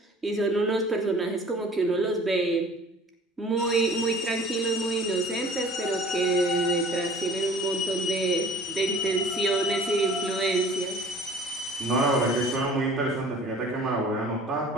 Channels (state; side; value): normal; both; correlation 0.48